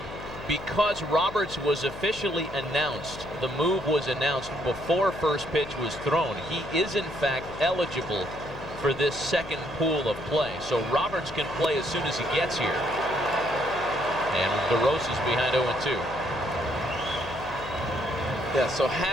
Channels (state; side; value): noise; left; hum, 13 dB below the sound